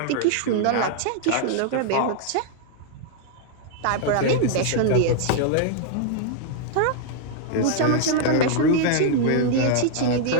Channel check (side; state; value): both; different; correlation -0.01